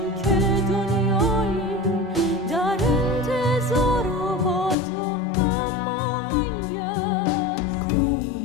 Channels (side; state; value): right; drops out; at 4.8 s